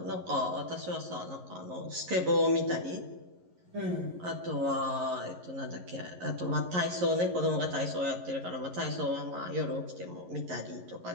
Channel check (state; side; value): late; left; 11 ms